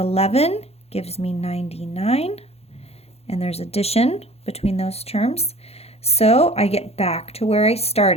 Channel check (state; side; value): late; right; 0.30 ms